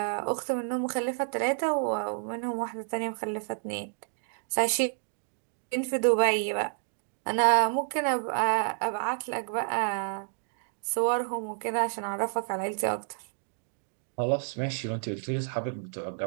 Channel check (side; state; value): left; silent; digital silence